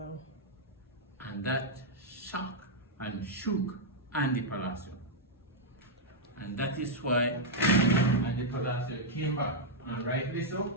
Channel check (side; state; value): both; normal; correlation -0.04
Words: And that shocked and shook Andy Palacio. And that is why Andy Palacio came back, and rightly so,